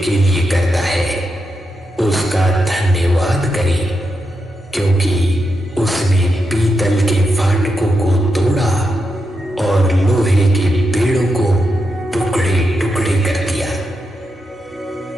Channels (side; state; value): both; normal; correlation 0.86